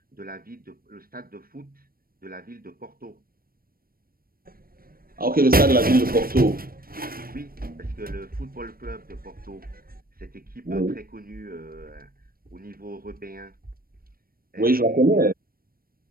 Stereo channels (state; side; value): late; left; 0.43 ms